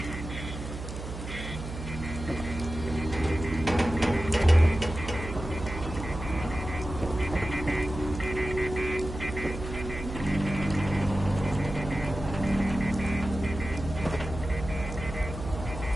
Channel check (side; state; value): right; noise; hum, 8 dB below the sound